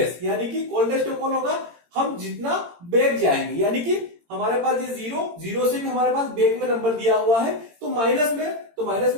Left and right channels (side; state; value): left; late; 18 ms